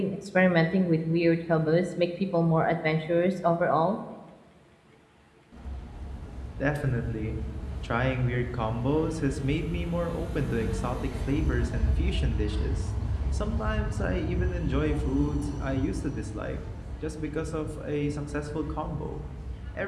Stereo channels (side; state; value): both; identical; correlation 1.00